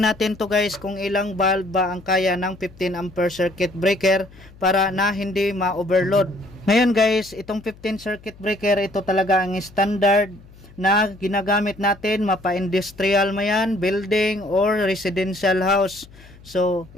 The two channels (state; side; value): noise; left; hum, 23 dB below the sound